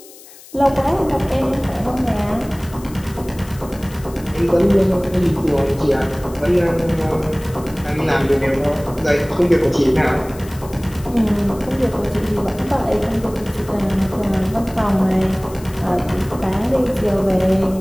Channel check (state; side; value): noise; left; hiss, 20 dB below the sound